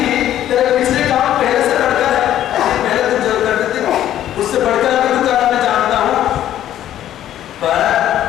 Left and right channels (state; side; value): quieter; right; 11.9 dB